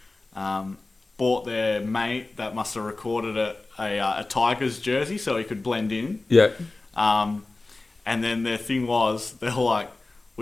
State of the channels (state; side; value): quieter; right; 3.2 dB